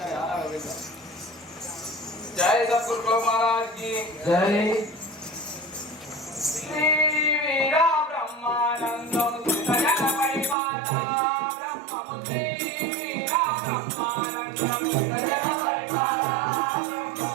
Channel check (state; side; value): drops out; left; at 10.6 s